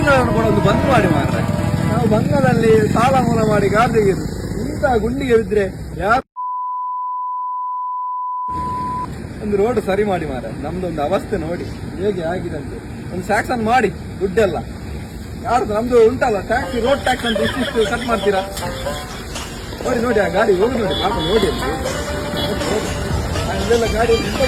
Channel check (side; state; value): both; identical; correlation 1.00